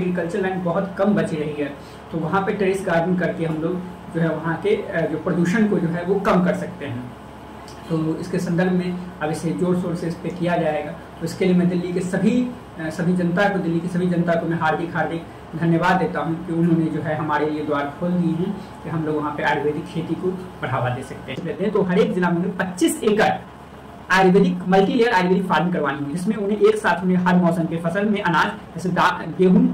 लैंड बहुत कम बची रही है, तो वहाँ पे टेरेस गार्डनिंग करके हम लोग जो है वहाँ के जो प्रदूषण को जो है वो कम कर सकते हैं। तो इसके संदर्भ में अब इसे जोर शोर से इस पर किया जाएगा। तो इसके लिए मैं दिल्ली के सभी जनता को, दिल्ली की सभी जनता को मैं हार्दिक धन्यवाद देता हूं कि उन्होंने जो है हमारे लिए द्वार खोल दिए हैं कि हम लोग वहाँ पे आयुर्वेदिक खेती को बढ़ावा दे सकते हैं। तो हर एक जिला में 25 एकड़ Ayurvedic multi layer Ayurvedic farming करवानी है, जिसमें उन्हें एक साथ हर मौसम के फसल में अनाज जैसे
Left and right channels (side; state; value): both; identical; correlation 1.00